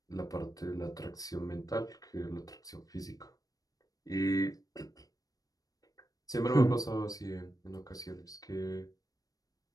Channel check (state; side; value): late; right; 0.18 ms